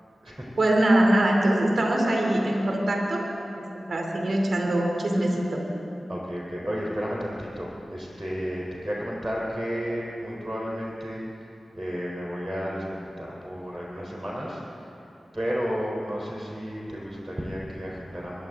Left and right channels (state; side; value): normal; both; correlation 0.96